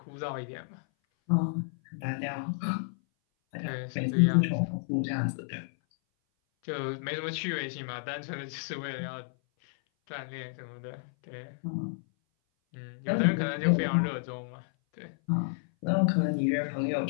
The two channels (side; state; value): right; silent; 56 dB below the other